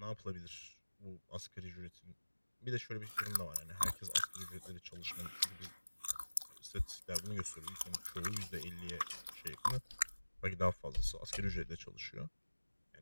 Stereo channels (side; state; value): both; inverted; correlation -1.00